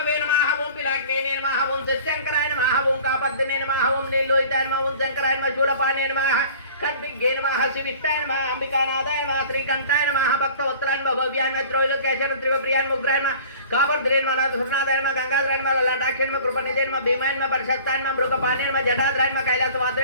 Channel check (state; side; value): inverted; both; correlation -0.45